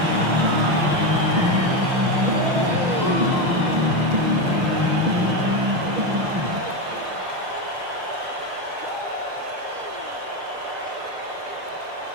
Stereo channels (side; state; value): left; late; 6.1 ms